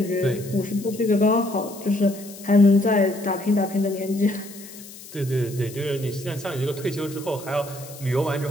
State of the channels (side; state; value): left; noise; hiss, 17 dB below the sound